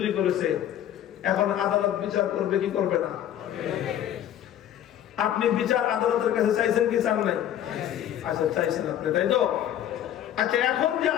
করেছে। এখন আদালত বিচার করবে কি করবে না? আপনি বিচার আদালতের কাছে চাইছেন কি চান নাই? আচ্ছা, চাইছেন আপনি, তাই তো? আচ্ছা, এখন যে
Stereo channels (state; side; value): quieter; right; 11.0 dB